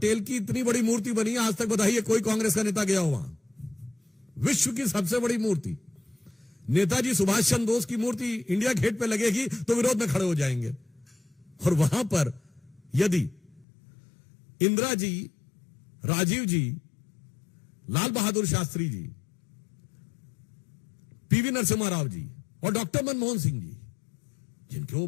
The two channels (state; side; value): drops out; right; at 13.7 s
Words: की इतनी बड़ी मूर्ति बनी है, आज तक बताइए कोई कांग्रेस का नेता गया हो वहां? विश्व की सबसे बड़ी मूर्ति नेताजी सुभाष चंद्र बोस की मूर्ति इंडिया गेट पे लगेगी तो विरोध में खड़े हो जाएंगे। और वहां पर यदि इंदिरा जी, राजीव जी, लाल बहादुर शास्त्री जी, पीवी नरसिम्हा राव जी और डॉक्टर मनमोहन सिंह जी, जिनके वो